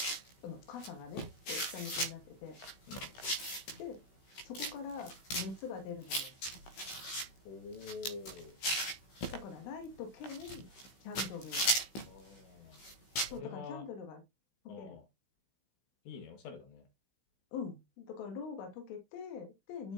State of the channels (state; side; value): late; right; 16 ms